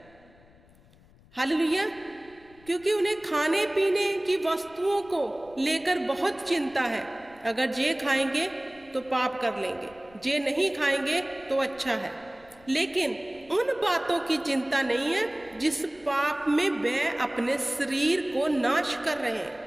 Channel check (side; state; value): left; noise; rumble, 27 dB below the sound